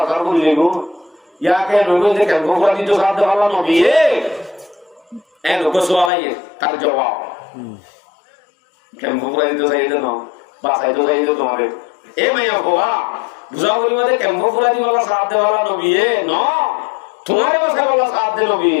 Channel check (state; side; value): drops out; right; at 6.1 s